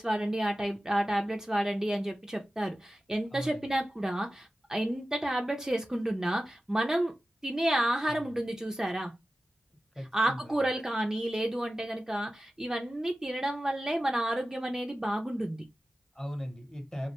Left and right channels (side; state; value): both; normal; correlation 0.95